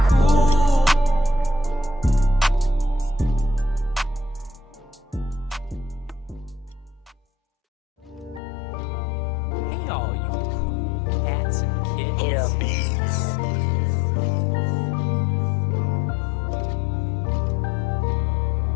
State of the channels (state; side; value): drops out; right; at 8.4 s